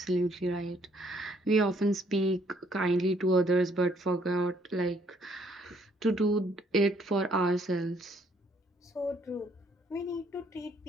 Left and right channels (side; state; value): both; normal; correlation 0.66